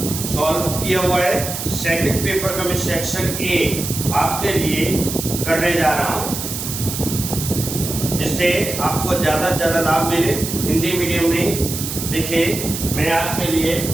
सॉल्व किया हुआ है। सेकंड पेपर का मैं सेक्शन ए आपके लिए करने जा रहा हूँ, जिससे आपको ज़्यादा से ज़्यादा लाभ मिले। हिंदी मीडियम में देखिए, मैं आपके लिए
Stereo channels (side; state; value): right; noise; hiss, 5 dB below the sound